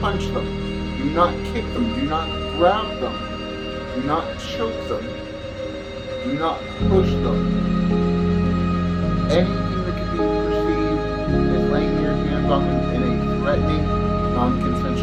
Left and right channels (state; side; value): identical; both; correlation 1.00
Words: punch them. Do not kick them. Do not grab them. Do not choke them. Do not push them. Anything that can be perceived as laying your hands on them in a threatening,